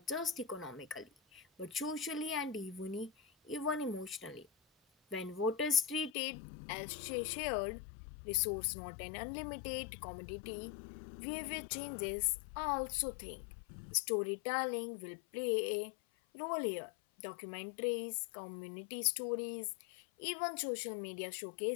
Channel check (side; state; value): right; drops out; at 6.1 s